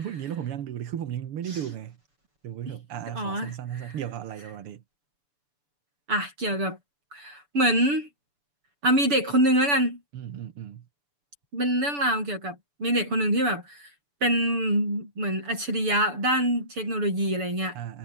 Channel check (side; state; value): left; late; 6.9 ms